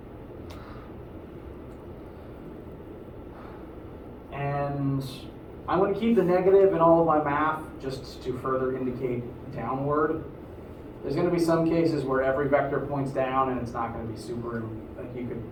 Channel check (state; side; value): identical; both; correlation 1.00